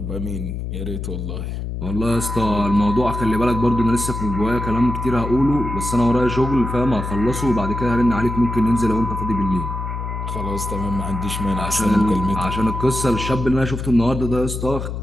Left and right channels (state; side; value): noise; left; hum, 5 dB below the sound